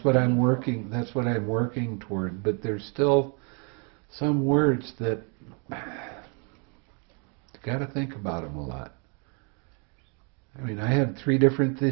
what I'm working toward, but there's still some words that you got to think about them a lot. I mean, I have 3 different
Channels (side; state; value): left; quieter; 36.2 dB